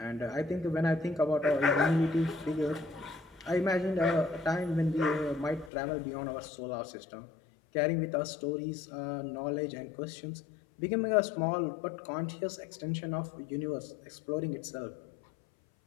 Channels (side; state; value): right; drops out; at 5.7 s